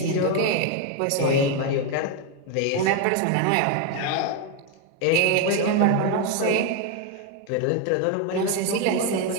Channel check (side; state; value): both; different; correlation 0.01